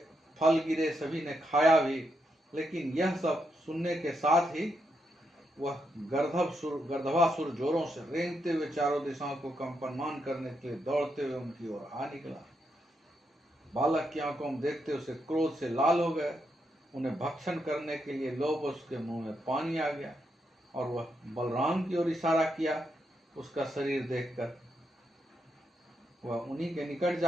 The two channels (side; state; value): both; normal; correlation 0.81